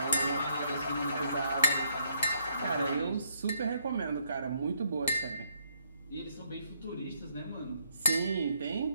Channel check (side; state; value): both; inverted; correlation -0.72